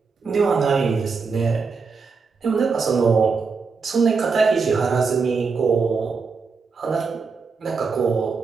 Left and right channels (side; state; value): left; quieter; 4.9 dB